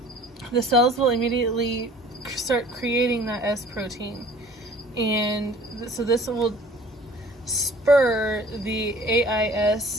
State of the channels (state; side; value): normal; both; correlation 0.50